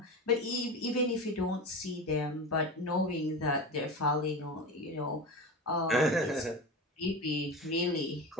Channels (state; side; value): normal; both; correlation 0.27